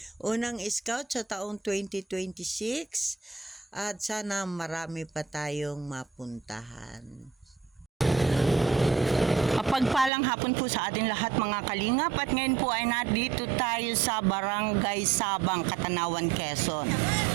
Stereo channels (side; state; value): left; drops out; at 10.1 s